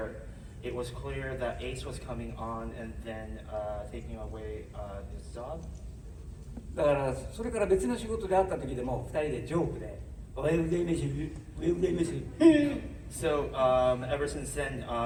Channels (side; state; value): both; identical; correlation 1.00